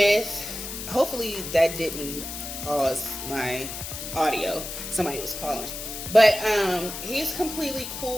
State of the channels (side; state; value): left; noise; hiss, 8 dB below the sound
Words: hopefully that didn't pause my audio. Somebody was calling. But he's completely